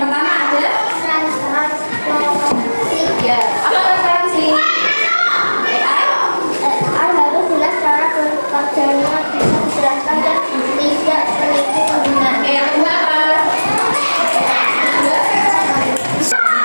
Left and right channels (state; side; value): inverted; both; correlation -1.00